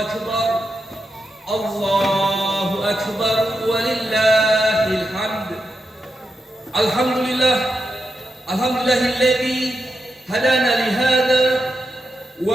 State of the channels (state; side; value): normal; both; correlation 0.86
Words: Allahu Akbar, walillahil hamd. Alhamdulillah, alhamdulillahilladzi hadana lihada